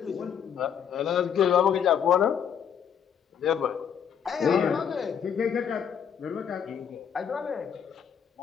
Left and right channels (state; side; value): quieter; right; 8.0 dB